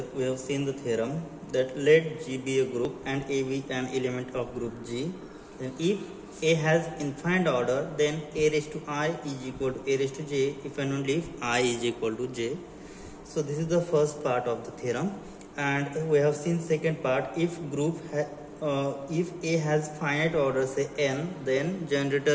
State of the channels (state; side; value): identical; both; correlation 1.00